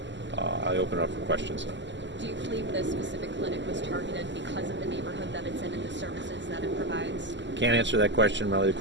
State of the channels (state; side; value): late; left; 0.53 ms